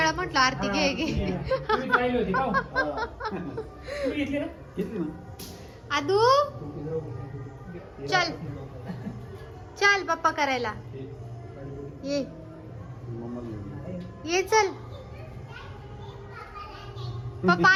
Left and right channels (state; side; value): identical; both; correlation 1.00